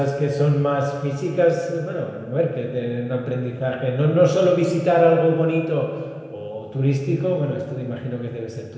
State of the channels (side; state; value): both; identical; correlation 1.00